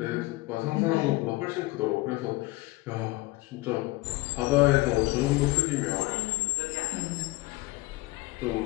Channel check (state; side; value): quieter; right; 21.1 dB